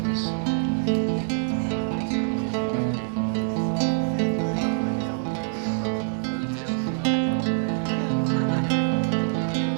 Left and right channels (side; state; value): left; silent; digital silence